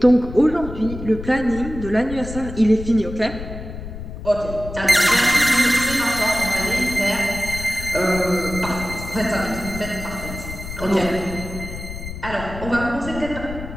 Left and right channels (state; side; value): noise; left; rumble, 10 dB below the sound